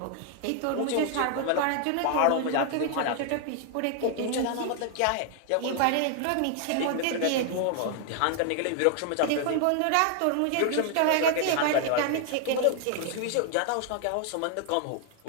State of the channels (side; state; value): both; different; correlation 0.00